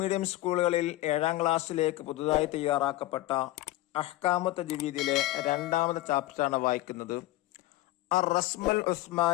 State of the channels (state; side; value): quieter; right; 16.8 dB